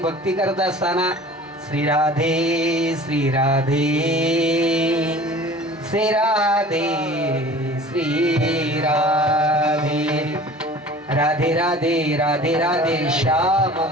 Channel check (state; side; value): normal; both; correlation 0.43